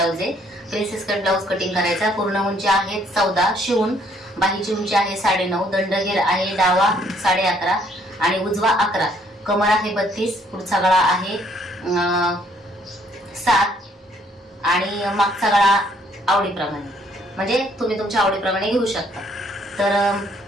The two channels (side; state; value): both; normal; correlation 0.65